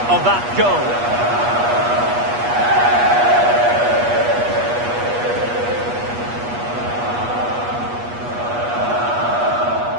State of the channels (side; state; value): left; late; 8.3 ms